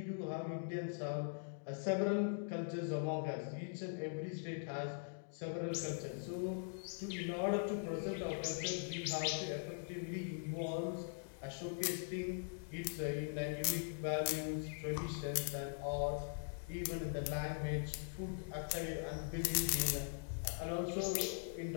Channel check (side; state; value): right; silent; digital silence